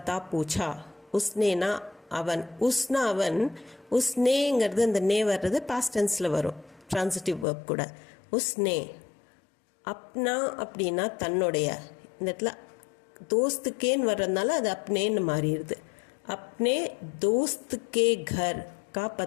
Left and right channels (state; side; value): drops out; right; at 7.5 s